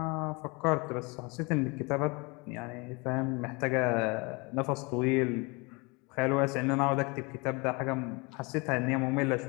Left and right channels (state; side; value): quieter; right; 28.0 dB